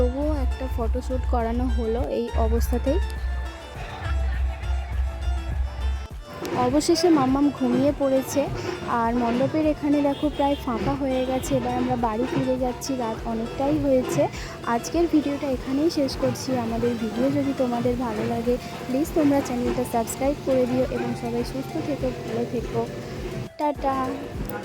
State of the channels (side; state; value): both; identical; correlation 1.00